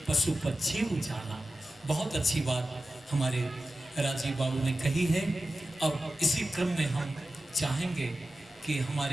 पशु पक्षी उजाला। बहुत अच्छी बात हमारे राजीव बाबू ने कही है। अब इसी क्रम में हम चाहेंगे कि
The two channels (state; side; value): normal; both; correlation 0.94